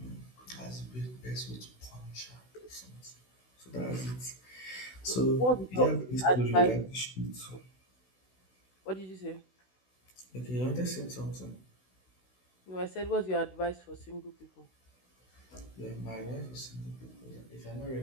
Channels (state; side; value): late; right; 16 ms